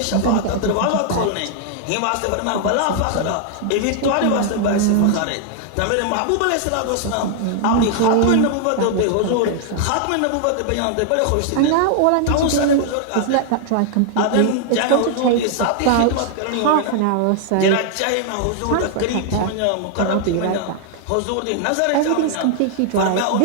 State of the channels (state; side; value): different; both; correlation 0.00